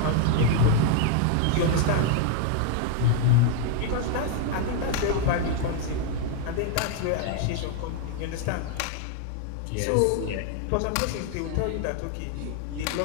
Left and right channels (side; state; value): both; different; correlation 0.00